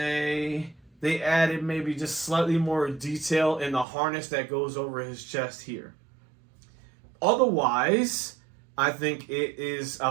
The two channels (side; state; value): left; drops out; at 3.9 s